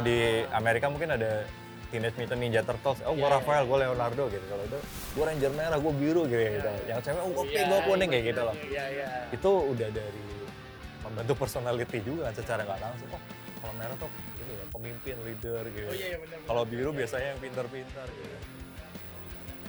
di Amerika mungkin ada Teenage Mutant Ninja Turtles, oh gue Iya, Raphael, gue Leonardo gitu. Kalau itu gue Ranger merah, gue biru gitu. Yang cewek, oh gue pink, gue kuning kayak gitu loh. Iya. Itu udah dari membentuk personality juga kan secara nggak langsung. Oh kalau merah tuh ini ya pemimpin, leader gitu. Oh iya benar. Kalau biru biasanya yang pintar-pintar gitu.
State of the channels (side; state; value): both; identical; correlation 1.00